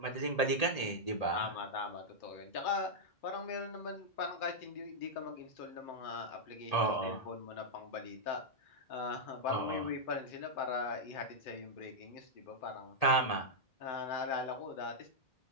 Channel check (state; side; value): late; right; 1.8 ms